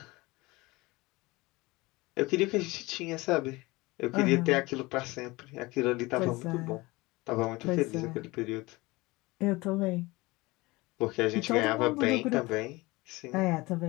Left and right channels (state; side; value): quieter; right; 22.1 dB